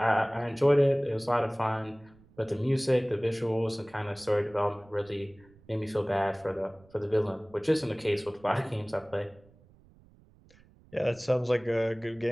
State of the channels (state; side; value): noise; right; rumble, 27 dB below the sound